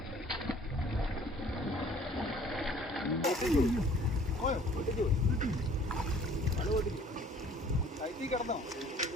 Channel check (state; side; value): normal; both; correlation 0.53